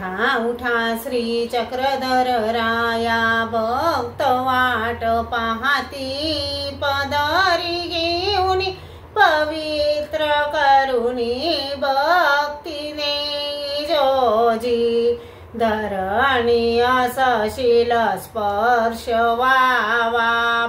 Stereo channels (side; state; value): both; identical; correlation 1.00